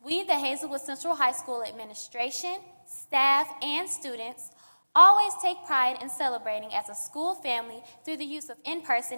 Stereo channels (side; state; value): both; inverted; correlation -1.00